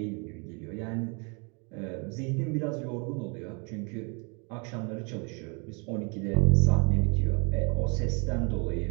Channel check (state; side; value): quieter; left; 34.1 dB